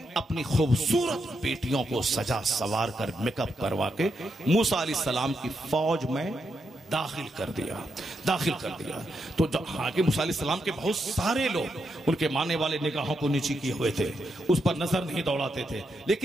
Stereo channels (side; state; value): both; normal; correlation 0.82